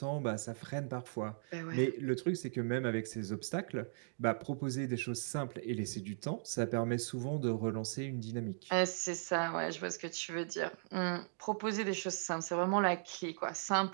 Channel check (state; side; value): silent; left; digital silence